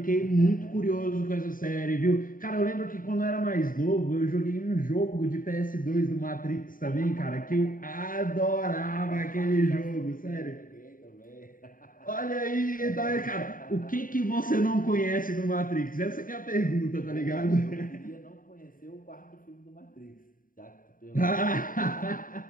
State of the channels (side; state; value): right; late; 0.40 ms